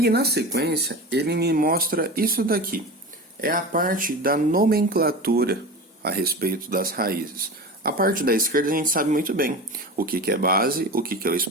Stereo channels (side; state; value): both; normal; correlation 0.30